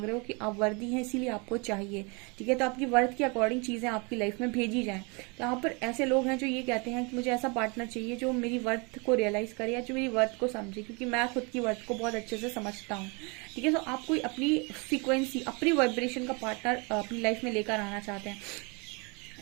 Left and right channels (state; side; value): quieter; left; 30.7 dB